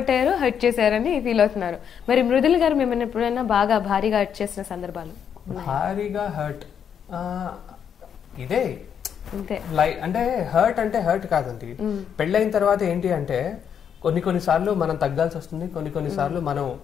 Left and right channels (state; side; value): quieter; right; 8.1 dB